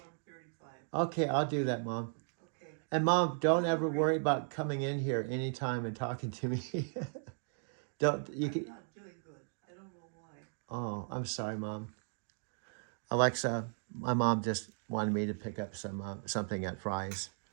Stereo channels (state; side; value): silent; left; 54 dB below the other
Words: 135. Okay, I'll do that, Mom. Okay. And Mom, don't ever worry about coming in here anytime and talking to me. Don't you I'm can? not doing good. I don't know why. Oh, I'm sorry, Mom. Alexa, my mom just wanted me to pick up something at Fry's,